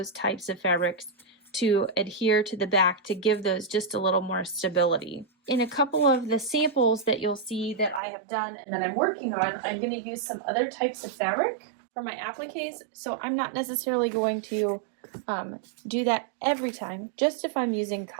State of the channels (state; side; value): drops out; left; at 8.0 s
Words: types of fabrics, to adhere to the back to give those just a little more stability. In a couple of the samples that you'll see that I have done and that I'm working on, I'm going to use some other types of fabric for my appliques, so I'm not necessarily going to do that every time, just if I'm using